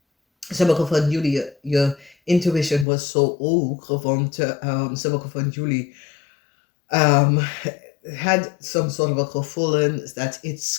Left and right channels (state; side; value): drops out; right; at 2.9 s